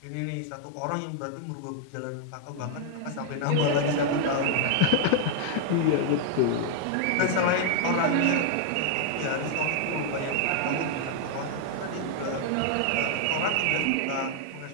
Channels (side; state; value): both; different; correlation 0.00